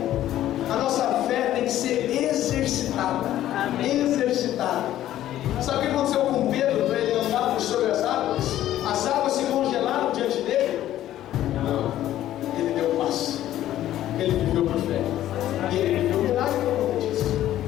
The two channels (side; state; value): right; quieter; 13.0 dB